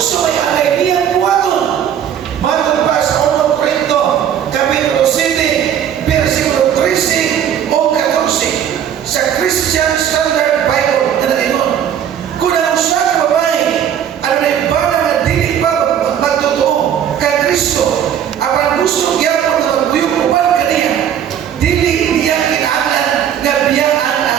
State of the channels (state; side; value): quieter; left; 9.3 dB